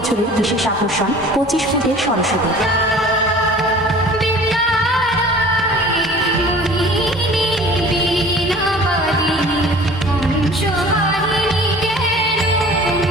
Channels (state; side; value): normal; both; correlation 0.45